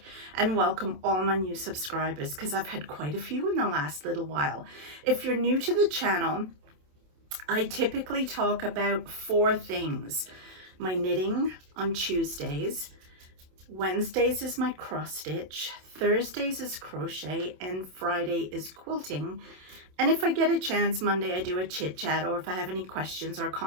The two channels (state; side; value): late; left; 27 ms